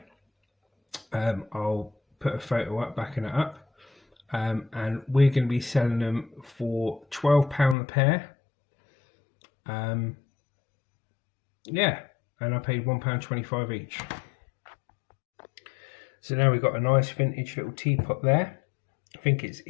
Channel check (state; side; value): drops out; right; at 7.8 s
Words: I'll put a photo up backing it up. And we're going to be selling them for £12 a pair. Yeah, and I paid £1.25 each. So now we've got a nice vintage little teapot there. I think it's